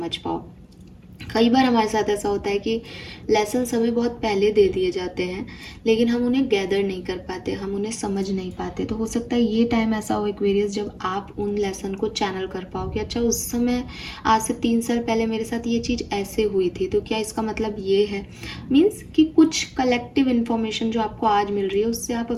पाओ। कई बार हमारे साथ ऐसा होता है कि लेसन्स हमें बहुत पहले दे दिए जाते हैं, लेकिन हम उन्हें गैदर नहीं कर पाते, हम उन्हें समझ नहीं पाते। तो हो सकता है ये टाइम ऐसा हो एक्वेरियस जब आप उन लेसन को चैनल कर पाओ कि अच्छा, उस समय आज से 3 साल पहले मेरे साथ ये चीज़ ऐसे हुई थी, तो क्या इसका मतलब ये है। मीन्स कि कुछ कलेक्टिव इन्फॉर्मेशन जो आपको आज मिल रही है, उससे आप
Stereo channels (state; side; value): identical; both; correlation 1.00